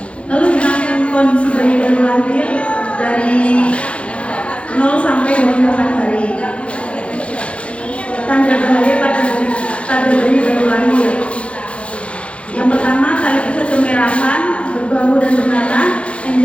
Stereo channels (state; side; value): late; right; 0.061 ms